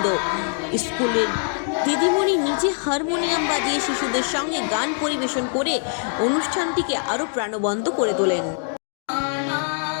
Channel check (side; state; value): right; silent; 58 dB below the other